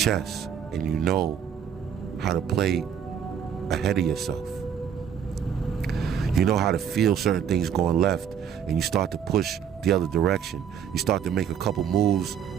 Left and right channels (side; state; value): left; quieter; 8.2 dB